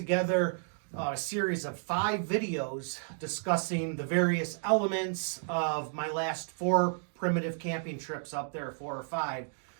a series of 5 videos discussing the various elements of my last 4 primitive camping trips up there, 4 or 5.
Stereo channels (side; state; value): left; silent; 56 dB below the other